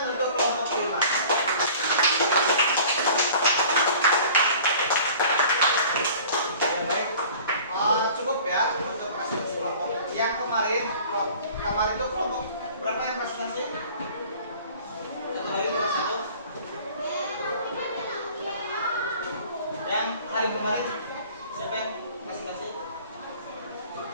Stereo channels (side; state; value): both; inverted; correlation -0.46